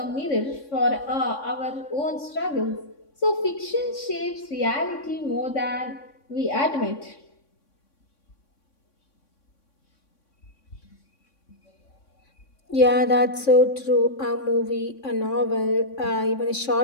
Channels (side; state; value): right; late; 3.6 ms